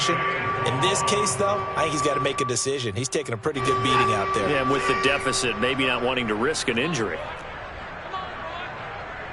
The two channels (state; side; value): identical; both; correlation 1.00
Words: In this case, though, I think he's got to make a decision. He's taking a pretty good beating out there. Yeah, with the deficit, maybe not wanting to risk an injury.